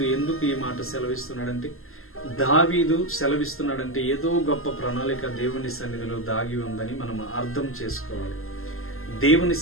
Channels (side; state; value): right; late; 0.62 ms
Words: ఎందుకు ఈ మాట సెలవిస్తున్నాడంటే, దావీదు సెలవిస్తున్నాడంటే ఏదో గొప్ప ప్రణాళిక దేవుని సన్నిధిలో దాగి ఉందని మనం అర్థం చేసుకోవాలి. దేవుని